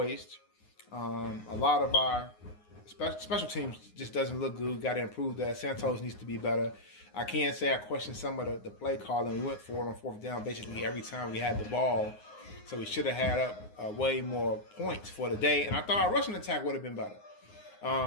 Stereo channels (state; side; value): late; right; 9.6 ms